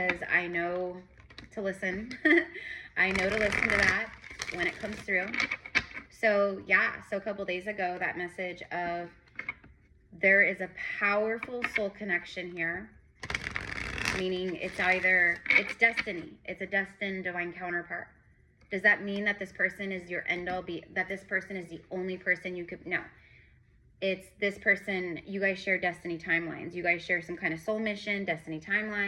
I know to listen. I know to listen to that when it comes through. So yeah, so a couple days ago, that message of there is a powerful soul connection here, meaning it's destiny. It's a destined divine counterpart. Does that mean that this person is your end all that this person is the only person you could, no. It's this person, you guys share destiny timelines. You guys share some kind of soul mission, destiny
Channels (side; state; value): both; identical; correlation 1.00